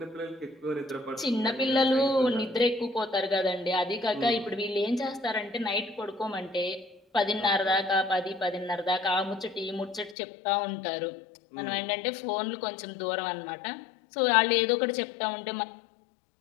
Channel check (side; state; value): right; drops out; at 10.2 s